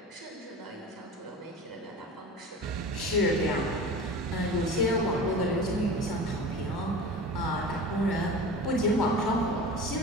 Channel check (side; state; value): both; normal; correlation 0.34